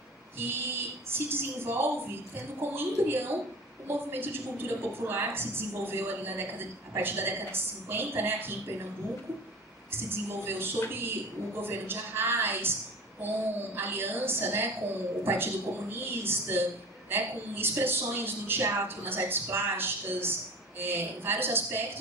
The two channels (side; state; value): both; normal; correlation 0.37